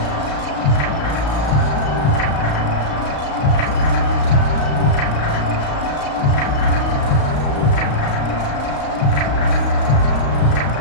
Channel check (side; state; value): right; late; 35 ms